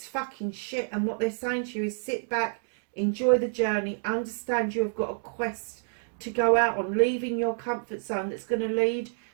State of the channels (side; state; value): left; silent; digital silence